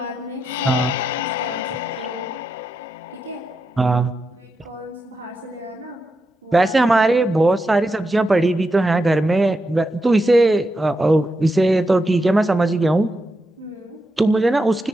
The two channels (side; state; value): both; normal; correlation 0.86